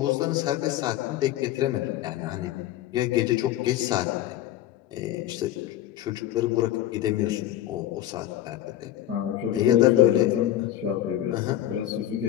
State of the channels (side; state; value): right; quieter; 12.9 dB